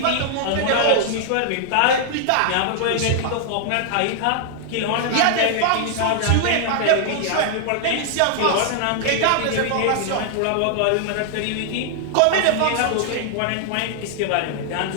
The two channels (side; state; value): both; different; correlation 0.00